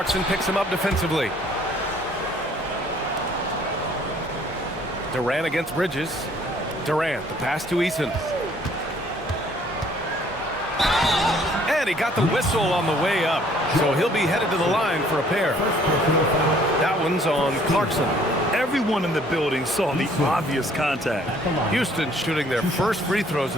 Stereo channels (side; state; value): both; normal; correlation 0.59